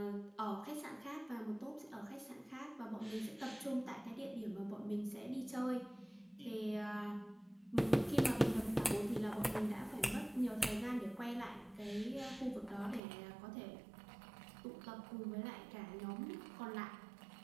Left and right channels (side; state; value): left; drops out; at 13.0 s